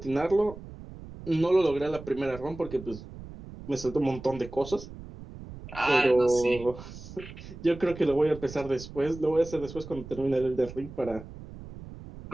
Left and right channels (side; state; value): right; noise; rumble, 14 dB below the sound